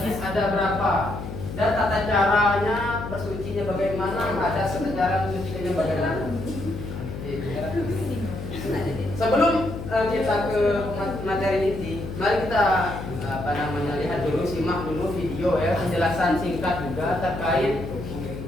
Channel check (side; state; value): left; noise; hum, 8 dB below the sound